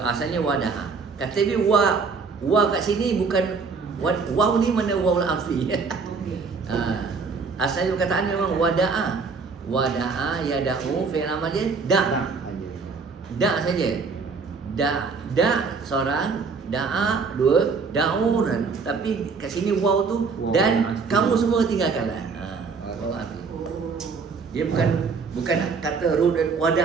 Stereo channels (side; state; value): left; quieter; 4.9 dB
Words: asalnya wada'a. Kata dia wa kat sini bukan waw ni mana waw al-afi. Asalnya perkataan memang wada'a. Wada'a yada'u fi'il amr dia da' saja. Da' seorang, da'a dua, da'u. Tapi kat sini waw tu dan kamu semua tinggalkanlah. Waw al-afi. Dia bukan kata ru dan